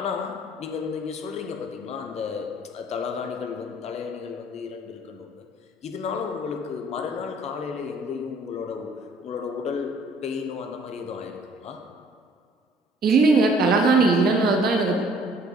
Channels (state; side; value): normal; both; correlation 0.57